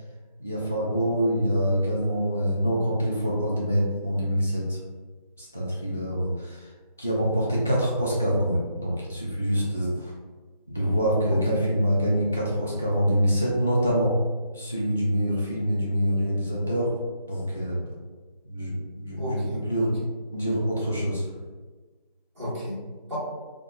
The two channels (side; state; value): both; inverted; correlation -0.79